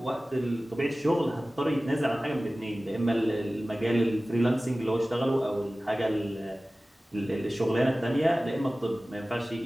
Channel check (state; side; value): normal; both; correlation 0.97